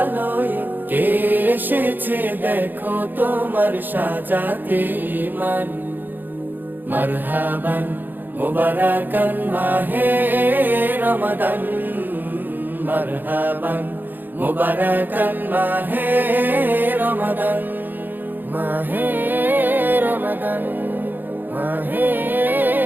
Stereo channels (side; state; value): left; late; 0.089 ms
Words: লয়ে কে এসেছে দেখো তোমার সাজাতে ইমান। মারহাবান মুবারাকান মাহে রমাদান, মারহাবান মুবারাকান মাহে রমাদান, মাহে রমাদান, মাহে